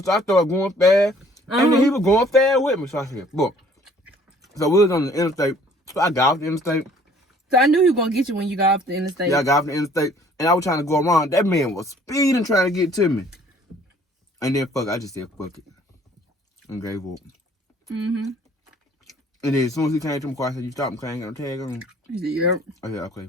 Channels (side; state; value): both; normal; correlation 0.57